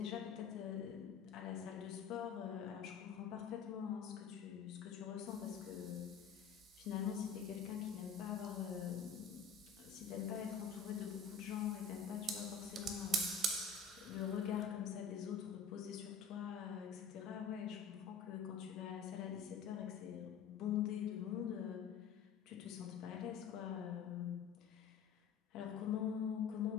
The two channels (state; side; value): quieter; right; 5.5 dB